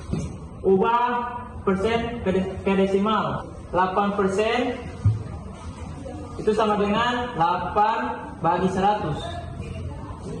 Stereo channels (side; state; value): both; identical; correlation 1.00